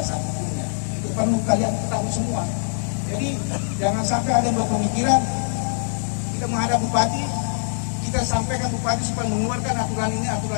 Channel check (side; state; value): right; silent; 63 dB below the other